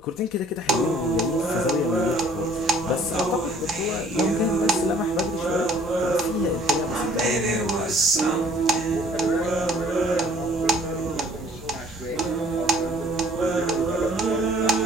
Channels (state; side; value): normal; both; correlation 0.57